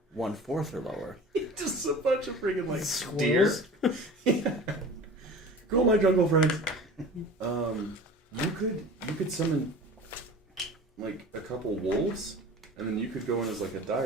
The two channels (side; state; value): both; normal; correlation 0.39